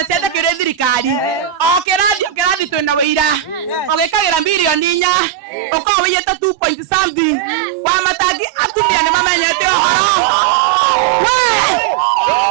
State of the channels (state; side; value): drops out; left; at 5.1 s